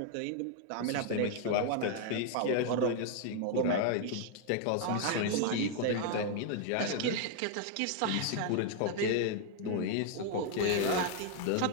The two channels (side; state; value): both; different; correlation 0.00